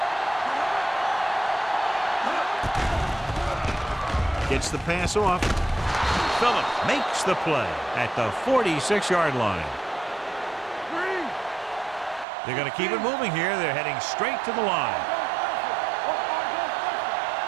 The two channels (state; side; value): drops out; left; at 12.2 s